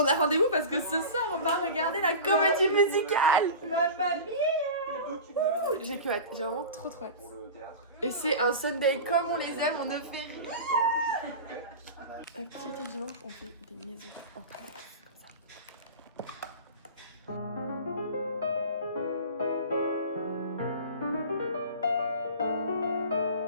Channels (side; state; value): both; inverted; correlation -0.33